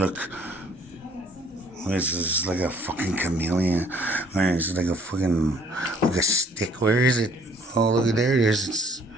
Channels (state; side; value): normal; both; correlation 0.59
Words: This is like a fucking chameleon. Where is it? Like a fucking, like a stick. Where is it? Oh, look at there it is.